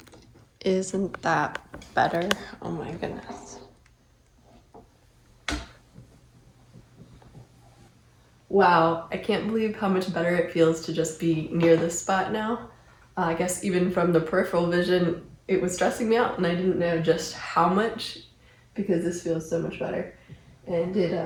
Isn't that better? Oh my goodness. Wow, I can't believe how much better it feels to just be near this spot now. I guess even from the peripheral vision, it was stressing me out and I didn't know just how much, because this feels so much better. And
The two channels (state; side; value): identical; both; correlation 1.00